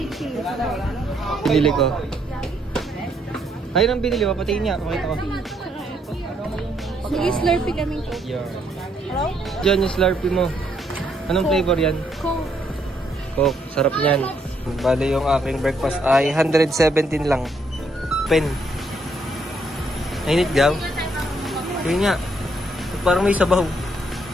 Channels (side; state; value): both; normal; correlation 0.72